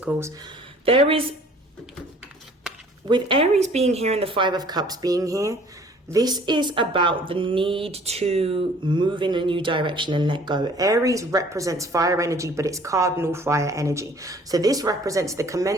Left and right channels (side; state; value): both; normal; correlation 0.53